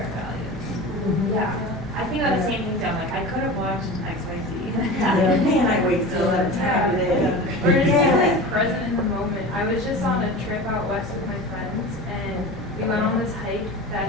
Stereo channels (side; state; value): both; normal; correlation 0.32